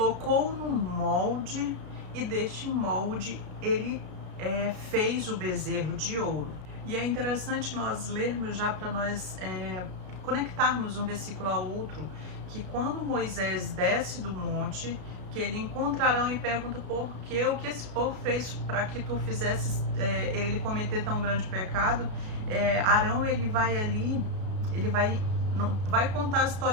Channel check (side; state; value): left; late; 33 ms